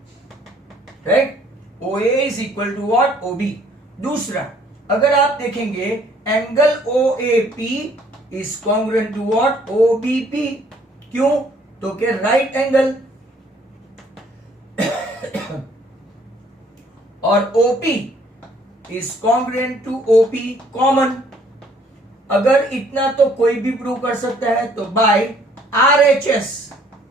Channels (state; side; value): normal; both; correlation 0.61